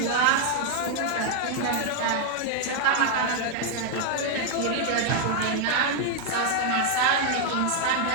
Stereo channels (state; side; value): different; both; correlation 0.00